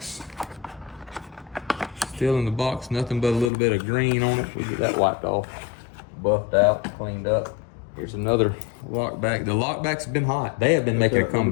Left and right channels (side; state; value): right; drops out; at 3.5 s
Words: Still in the box. Nothing but a little bit of green on it. We get that wiped off, buffed out, cleaned up. Here's another lockback. The lockbacks have been hot. They have been making a